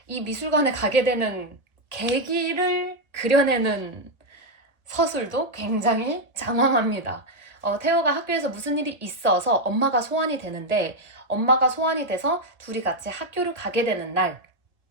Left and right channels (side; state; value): left; late; 1.9 ms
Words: 이 미술관에 가게 되는 계기를 그려내는 서술도 굉장히 장황합니다. 태호가 학교에서 무슨 일이 있어서 엄마가 소환이 되는데 엄마가 소환이 돼서 둘이 같이 학교를 가게 되는